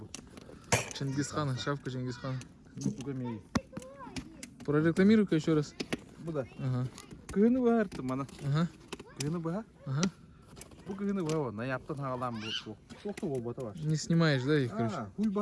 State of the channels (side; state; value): both; identical; correlation 1.00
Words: бұл. Чингисхана, шапка Чингисхана. Бұға мей. Прорекламируй-ка еще раз. Бұда. Ага. Күйіні бұға әртім мана. Ага. Күйіні бұға? Ага. Бұл күйіні бұға оны. Яптын ғалам бұл. Соқты ол бата бар. Не снимаешь, да, их, короче? Хуй